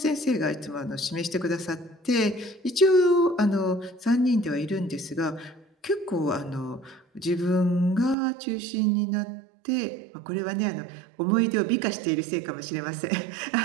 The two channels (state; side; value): drops out; left; at 8.2 s